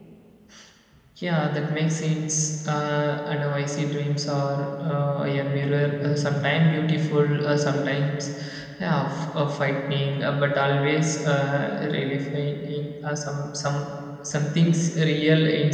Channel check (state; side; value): identical; both; correlation 1.00